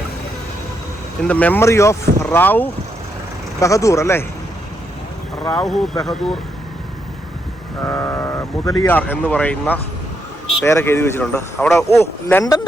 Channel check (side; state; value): both; normal; correlation 0.79